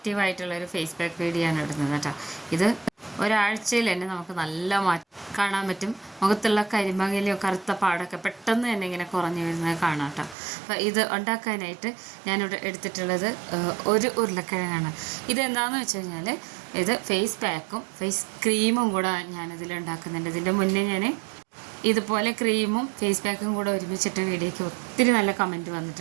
ഫേസ് പാക്ക് വീഡിയോ ആണ് ഇടുന്നത് കേട്ടോ. ഇത് ഒരാഴ്ചയിൽ തന്നെ നമുക്ക് നല്ല മാറ്റം കാണാൻ പറ്റും. മുഖത്തുള്ള കരിമങ്ങലോ കറുത്ത പാടൊക്കെ പെട്ടെന്ന് തന്നെ ഇങ്ങനെ കുറഞ്ഞു വരുന്നത് കാണാം കേട്ടോ. അപ്പോൾ ഇത് ഉണ്ടാക്കാനായിട്ട് ഞാനിവിടെ എടുത്തിട്ടുള്ളത് ഒരു ഉരുളക്കിഴങ്ങാണ്. ഇതെന്താണെന്ന് വെച്ച് കഴിഞ്ഞാൽ ഇത് ഫേസ് പാക്കും ഫേസ് ക്രീമും കൂടെ ഞാനിതിൽ ഉണ്ടാക്കുന്നുണ്ട്. ഇതിൻ്റെ മുന്നേ ഞാൻ ഇതുപോലെ ക്രീമും ഫേസ് പാക്കും കൂടെ ഒരുമിച്ചിട്ട് വീഡിയോയ്ക്ക് ഒത്തിരി നല്ല കമൻറ്റ്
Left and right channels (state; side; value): drops out; left; at 10.4 s